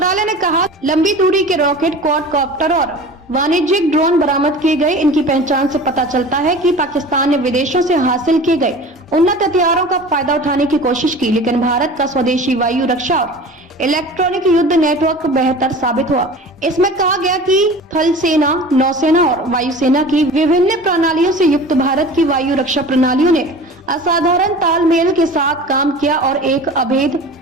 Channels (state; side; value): normal; both; correlation 0.38